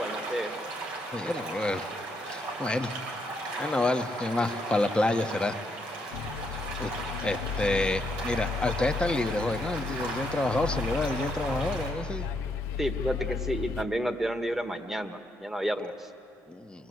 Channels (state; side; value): normal; both; correlation 0.76